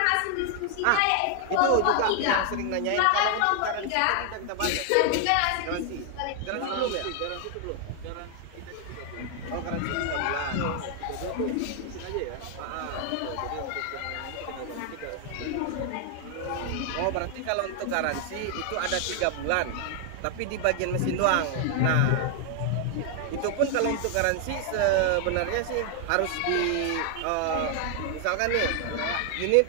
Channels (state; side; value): different; both; correlation 0.00